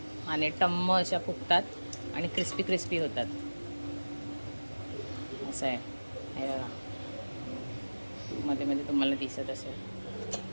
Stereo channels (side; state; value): both; inverted; correlation -1.00